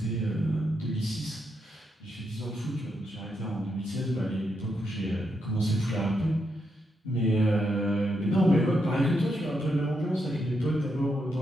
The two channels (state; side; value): normal; both; correlation 0.81